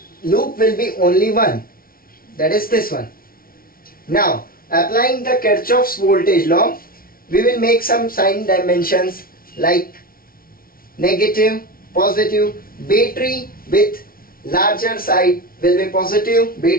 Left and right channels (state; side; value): late; right; 0.43 ms